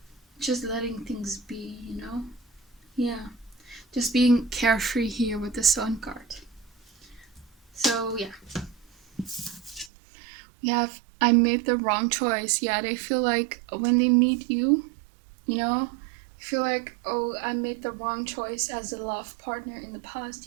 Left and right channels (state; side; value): drops out; left; at 9.9 s